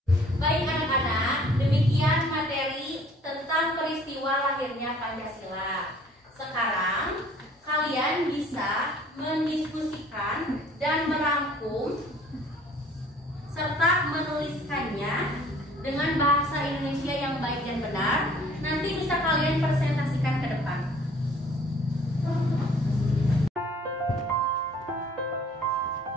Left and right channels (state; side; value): normal; both; correlation 0.54